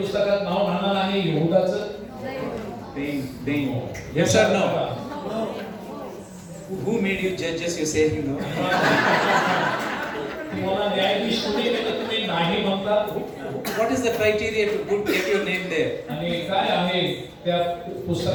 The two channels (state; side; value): identical; both; correlation 1.00